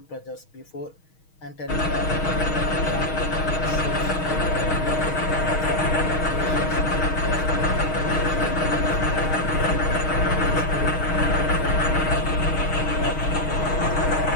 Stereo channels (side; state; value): right; late; 6.4 ms